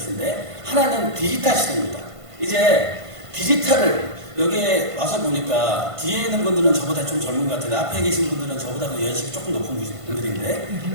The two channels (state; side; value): late; left; 1.5 ms